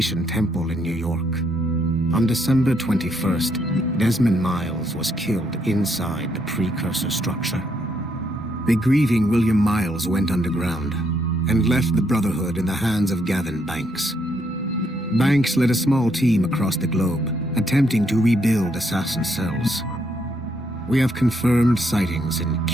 temple in New York. On December 21st, Desmond Miles was killed inside the precursor structure. The grieving William Miles went underground and left the Brotherhood in the hands of Gavin Banks. Banks led a small team across the globe, attempting to rebuild assassin cells. We have confirmed sightings in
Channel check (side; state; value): both; normal; correlation 0.74